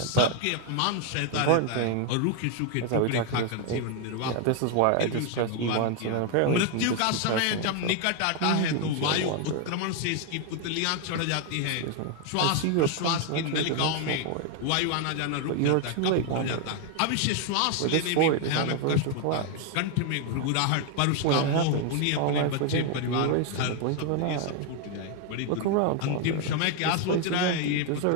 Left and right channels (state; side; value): different; both; correlation 0.00